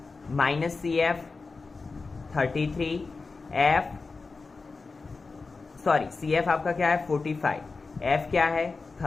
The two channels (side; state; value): right; quieter; 4.1 dB